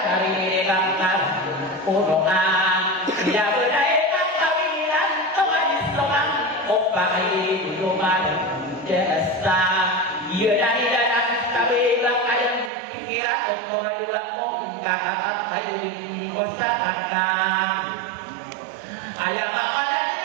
ang karan puno nga pinabunay ang kawilan kawalis lumang opa ay luman jasa iya na nila ng kabilang ayang pikiran kung koradula kong kakatat tayo din ko sa kakang ayang makalan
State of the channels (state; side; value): drops out; left; at 12.7 s